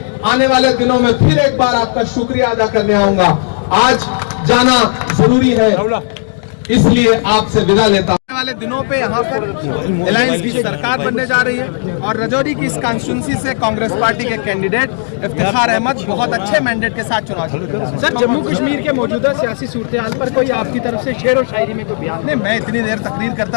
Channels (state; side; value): silent; right; 62 dB below the other